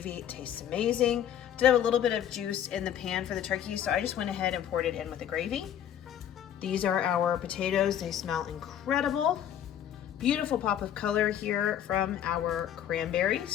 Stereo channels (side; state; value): right; quieter; 10.2 dB